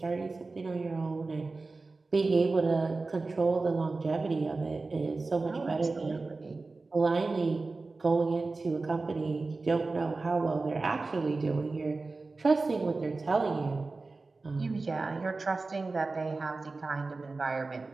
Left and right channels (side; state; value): left; quieter; 3.7 dB